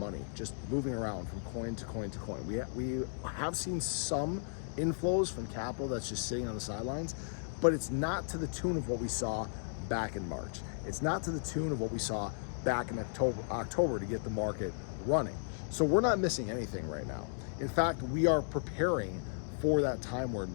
just moving around from coin to coin to coin. We have seen some inflows from capital that's just sitting on the sidelines, but it's not to the tune of what we saw back in March. It's not to the tune of what we saw back in October to get the market running. So we're not missing anything right now. In fact, we are preparing for that time where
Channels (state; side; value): silent; right; digital silence